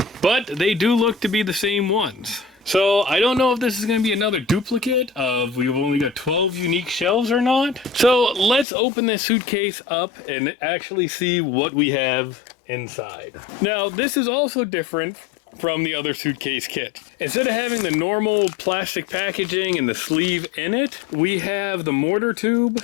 but they do look to be the same ones. So I don't know if this is going to be another duplicate of we've only got 12 unique shells or not. So let's open this suitcase up and actually see what we have inside. Now this is also different from the other suitcase kit. Instead of having the normal plastic packaging and the sleeve in it, we have the mortar tube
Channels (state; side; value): drops out; right; at 8.7 s